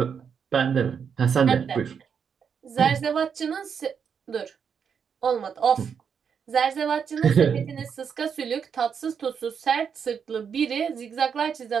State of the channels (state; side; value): quieter; left; 7.0 dB